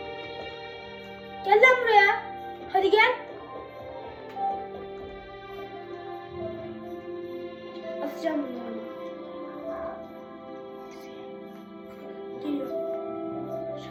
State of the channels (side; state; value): both; identical; correlation 1.00